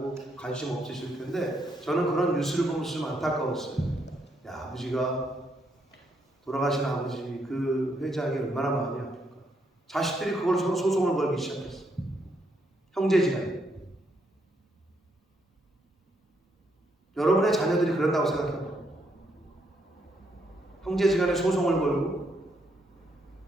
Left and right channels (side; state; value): both; normal; correlation 0.76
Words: 관심 없으실 텐데 저는 그런 뉴스를 보면서 좀 안타까웠어요. 아버지가 돌아가신 아버지 그 회장이 얼마나 마음이 아플까. 자식들이 그걸 서로 소송을 걸기 시작했어요. 형제지간에. 여러분의 자녀들이 그런다고 생각해요. 형제지간에 소송을 걸고